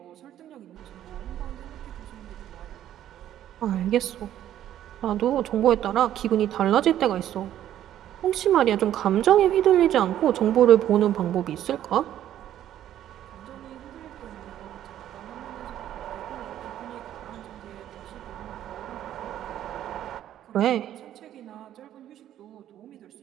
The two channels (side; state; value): left; quieter; 11.7 dB